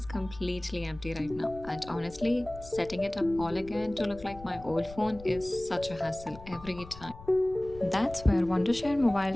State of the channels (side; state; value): left; noise; rumble, 17 dB below the sound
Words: completely empty right now, and honestly, setting it up all again to look like my old phone is such a hassle every time. That's where Wondershare